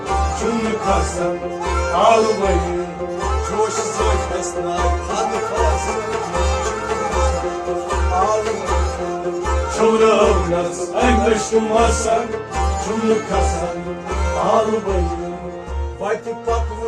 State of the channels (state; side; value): identical; both; correlation 1.00